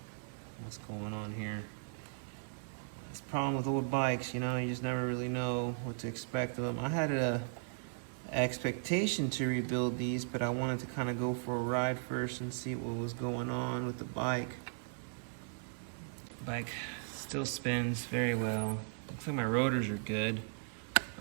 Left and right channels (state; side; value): silent; left; 53 dB below the other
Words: what's going on here. That's the problem with old bikes, you know, you just never really know what to expect of them. I had a expectation to rebuild these, but I wanted to kind of go for a ride first and see what was going on with the bike. Bike still spins very well. Looks like my rotors are good.